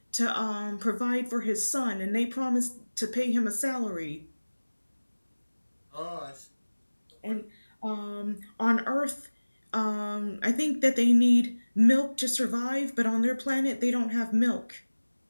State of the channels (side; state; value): both; inverted; correlation -1.00